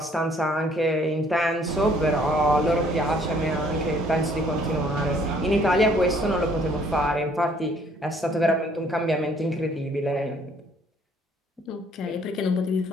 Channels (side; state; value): both; normal; correlation 0.61